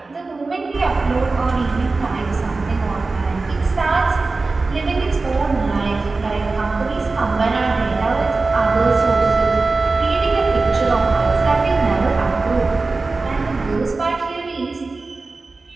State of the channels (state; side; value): quieter; left; 3.7 dB